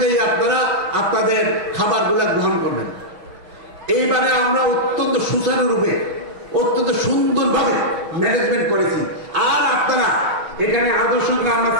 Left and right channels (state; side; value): late; left; 6.3 ms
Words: আপনারা আপনাদের খাবারগুলো গ্রহণ করবেন। এইবারে আমরা অত্যন্ত সুচারুরূপে অত্যন্ত সুন্দরভাবে ম্যানেজমেন্ট করেছি। আর আপনারা এখানে আদর্শ গ্রাম